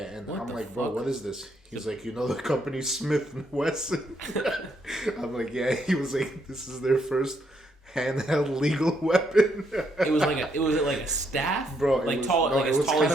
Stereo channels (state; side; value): normal; both; correlation 0.75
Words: and what I'm like, fuck? bro, what is this? He's like, you know the company Smith and Wesson? I'm like, yeah. He was like, this is their first handheld legal weapon. It was like a staff, bro. Like was, tall, no, like it as was tall kind as